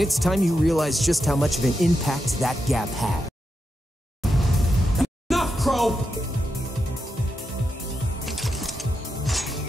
it's time you realize just how much of an impact that gap had. Enough, Crow!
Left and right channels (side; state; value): both; normal; correlation 0.86